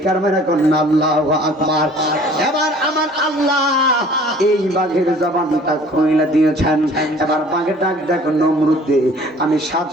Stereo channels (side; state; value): both; normal; correlation 0.51